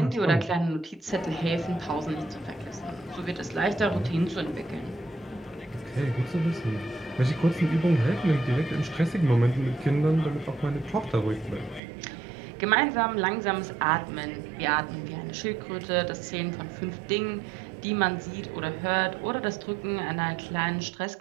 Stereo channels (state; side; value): drops out; left; at 11.8 s